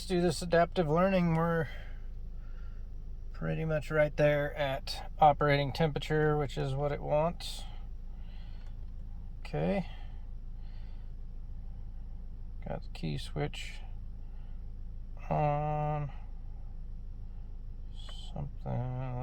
do this adaptive learning. We're pretty much right there at operating temperature, which is what it wants. Okay, got the key switch on. Something,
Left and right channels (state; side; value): identical; both; correlation 1.00